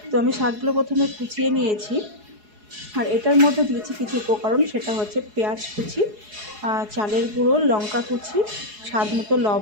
তো আমি শাকগুলো প্রথমে কুচিয়ে নিয়েছি, আর এটার মধ্যে দিয়েছি কিছু উপকরণ, সেটা হচ্ছে পেঁয়াজ কুচি, চালের গুঁড়ো, লঙ্কা কুচি, স্বাদ মতো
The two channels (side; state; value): left; late; 4.8 ms